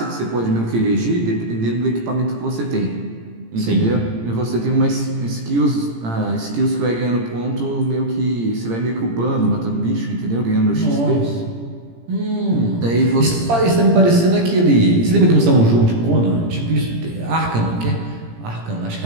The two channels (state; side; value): late; left; 17 ms